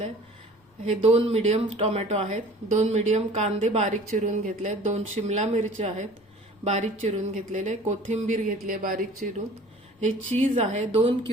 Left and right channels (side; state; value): both; normal; correlation 0.47